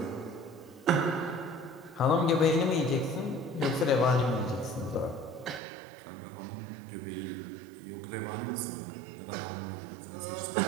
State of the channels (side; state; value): left; drops out; at 5.6 s